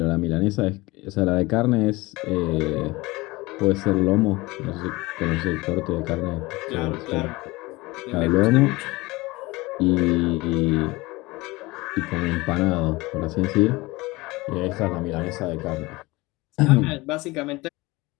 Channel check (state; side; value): quieter; right; 21.9 dB